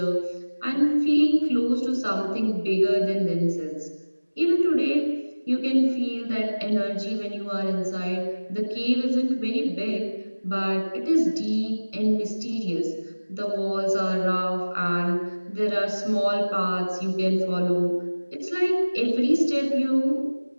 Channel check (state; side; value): inverted; both; correlation -1.00